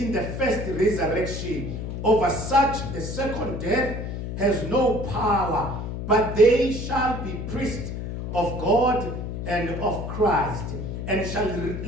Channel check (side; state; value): left; noise; hum, 5 dB below the sound